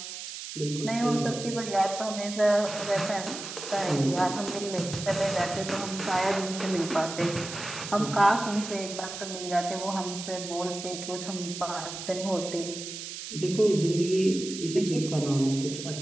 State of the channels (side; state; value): right; noise; hiss, 9 dB below the sound